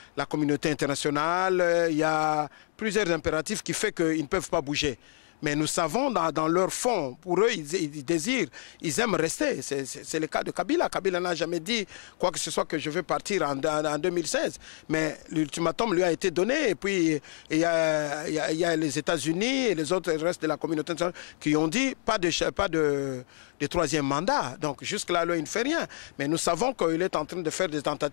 la communauté internationale, il y a plusieurs impératifs qui font qu'ils ne peuvent pas bouger. Mais nous savons dans leur fond, pour eux, ils désirent, ils aiment rester. C'est le cas de Kabila. Kabila n'a jamais dit quoi que ce soit que je veux partir en 2016. Mais l'ultimatum lui a été donné. Et puis, il y a les États-Unis et les autres, le reste de la communauté internationale qui ont dit pas de troisième mandat. Donc jusque-là, il ne fait rien. Mais nous savons qu'il est en train de faire des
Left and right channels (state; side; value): silent; right; digital silence